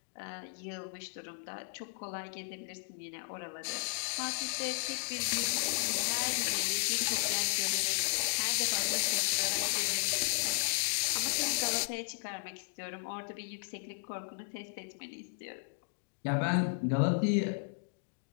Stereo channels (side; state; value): right; silent; digital silence